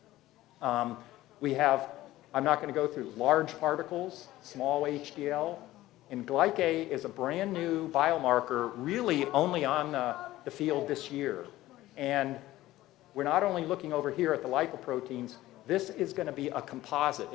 We have, I'm not going to go through large particles, small HDL, and glycate is a brand new biomarker really only on the field this year. And we're not only looking over here at the lipoproteins, this is going to be a composite.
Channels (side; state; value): right; quieter; 16.1 dB